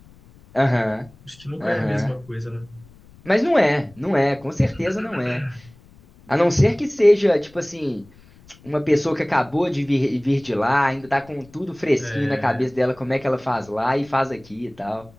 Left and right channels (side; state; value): left; noise; rumble, 26 dB below the sound